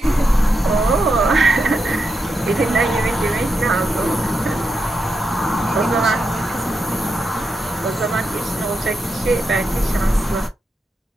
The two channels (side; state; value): both; normal; correlation 0.86